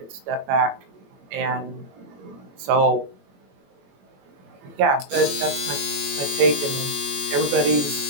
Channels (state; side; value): late; left; 21 ms